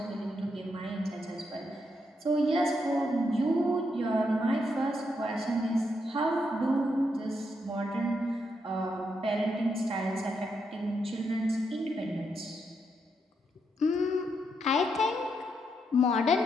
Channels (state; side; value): normal; both; correlation 0.80